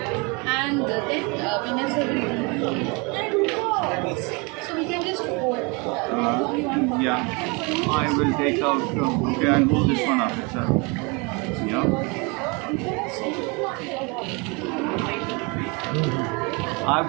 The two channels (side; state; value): left; quieter; 29.7 dB